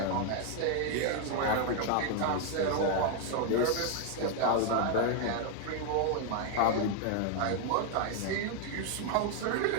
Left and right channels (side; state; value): both; different; correlation 0.00